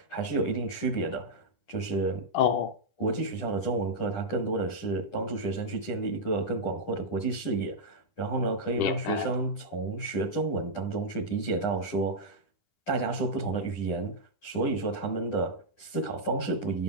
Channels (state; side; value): late; right; 10 ms